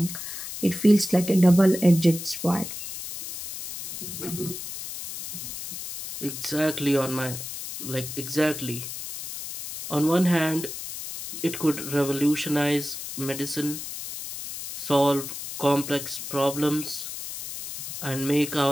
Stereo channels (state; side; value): noise; left; hiss, 8 dB below the sound